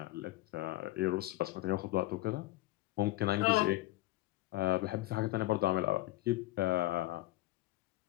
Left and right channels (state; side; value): quieter; right; 17.7 dB